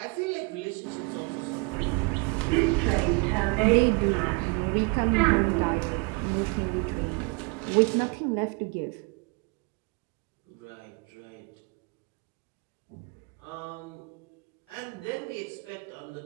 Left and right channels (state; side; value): quieter; left; 30.6 dB